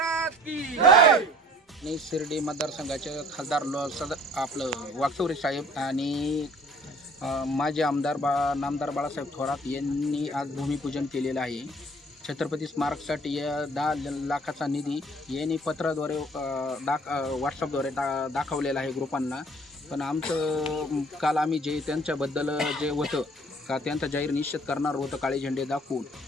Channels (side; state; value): both; normal; correlation 0.53